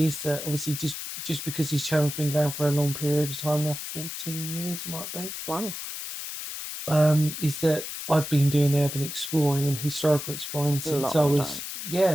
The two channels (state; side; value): noise; left; hiss, 7 dB below the sound